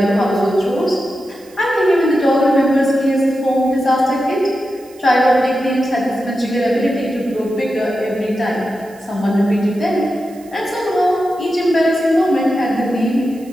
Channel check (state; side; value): noise; right; hiss, 26 dB below the sound